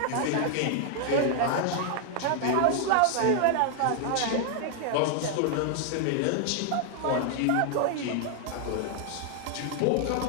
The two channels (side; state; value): both; different; correlation 0.00